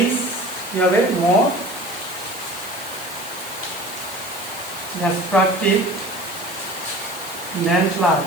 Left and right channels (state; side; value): noise; right; hiss, 14 dB below the sound